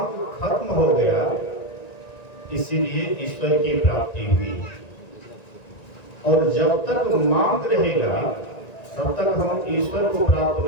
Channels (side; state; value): right; late; 1.9 ms